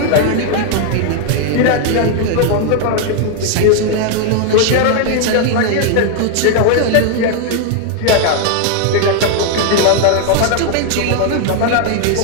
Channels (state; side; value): different; both; correlation 0.00